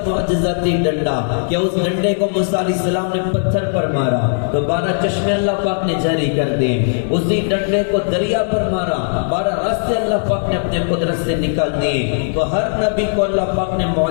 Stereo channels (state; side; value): silent; right; digital silence